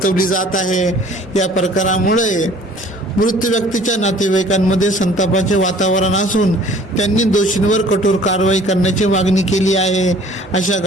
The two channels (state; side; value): normal; both; correlation 0.52